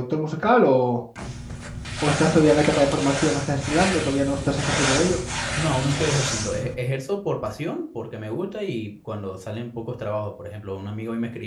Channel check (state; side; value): identical; both; correlation 1.00